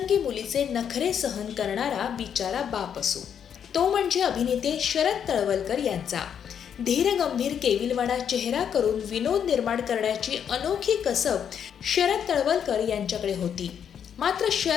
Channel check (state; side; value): quieter; right; 8.2 dB